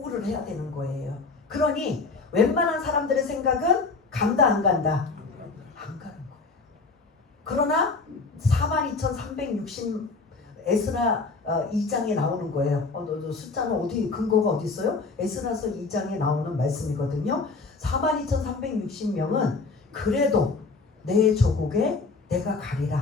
해야 되는 거예요. 그러니 웬만한 사람들의 생각은 간다 안 간다? 안 가는 거예요. 그러나 42,360 에스라 2장에 나오는 거예요. 숫자는 어디, 근거가 어디 있어요? 에스라서 2장에 나오는 말씀이거든요. 42,360명은 그래도 내 조국에 내가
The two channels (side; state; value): right; quieter; 4.1 dB